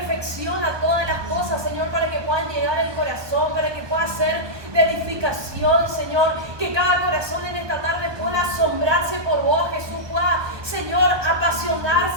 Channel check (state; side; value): late; left; 1.2 ms